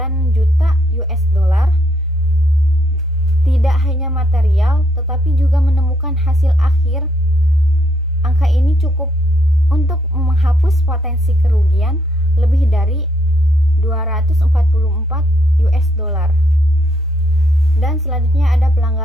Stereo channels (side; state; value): both; normal; correlation 0.73